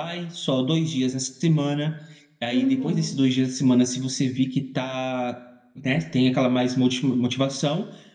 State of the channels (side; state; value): both; identical; correlation 1.00